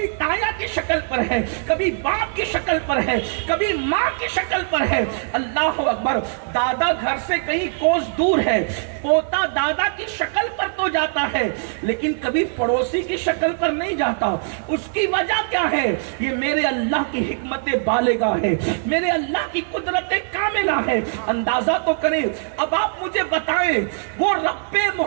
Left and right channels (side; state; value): left; silent; 56 dB below the other